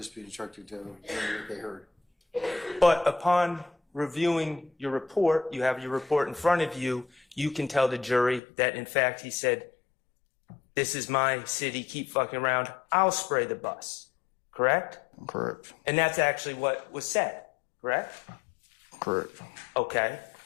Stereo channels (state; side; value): drops out; right; at 8.4 s